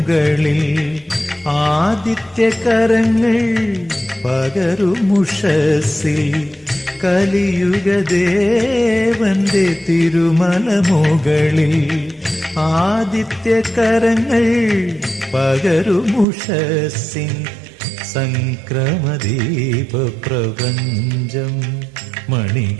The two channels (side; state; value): left; drops out; at 16.2 s